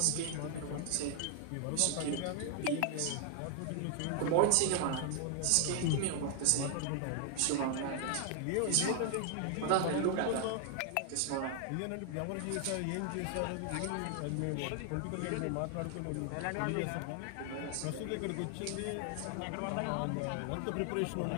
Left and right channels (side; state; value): both; different; correlation 0.00